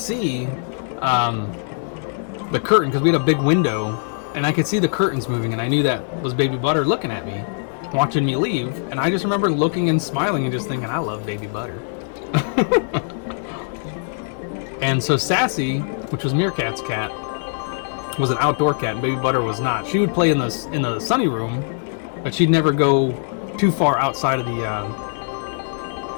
the curtain, because we had a big window, and I could see the curtains moving, and I knew that was Baby Butter looking at me, watching me leave. And I just remember looking and smiling and just thinking, I love Baby Butter. And so Sassy, which was Meerkat's cat, was an outdoor cat, and Baby Butter was not. She would play in the sunny room, but she'd never go too far outside of the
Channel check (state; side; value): silent; right; digital silence